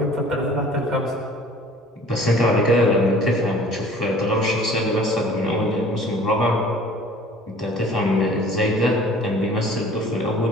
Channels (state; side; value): normal; both; correlation 0.49